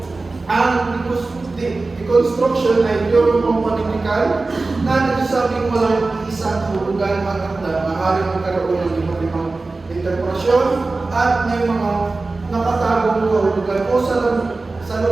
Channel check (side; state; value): left; quieter; 3.5 dB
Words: Ang deconstruction ay teorya pampanitikan na nagsasabing walang isang kahulugan ang akda, maaaring magkaroon ng iba't ibang interpretasyon at may mga nakatagong kahulugan o